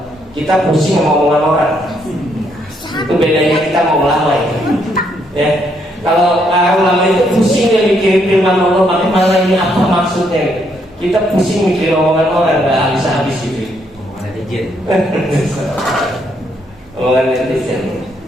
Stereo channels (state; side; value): normal; both; correlation 0.73